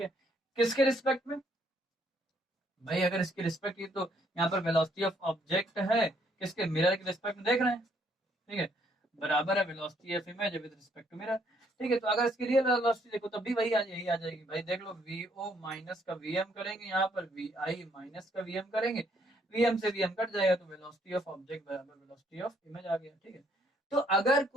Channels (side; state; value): both; normal; correlation 0.68